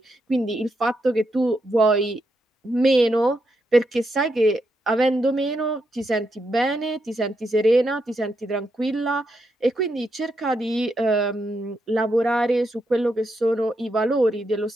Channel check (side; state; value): both; normal; correlation 0.82